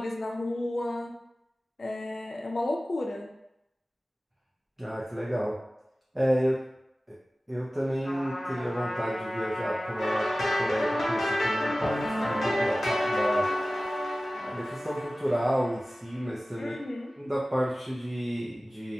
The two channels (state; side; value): normal; both; correlation 0.97